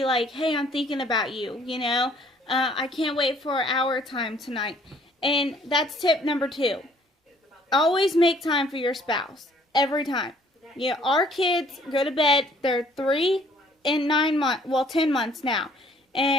like, hey, I'm thinking about you, you know. I can't wait for our time tonight. And that's tip number 2. Always make time for your spouse. Every time. Yeah, our kids go to bed. They're 3 and 9 months. Well, 10 months now.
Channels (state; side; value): normal; both; correlation 0.60